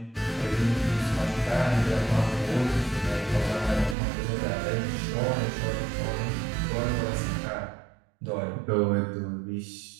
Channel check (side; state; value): left; drops out; at 4.0 s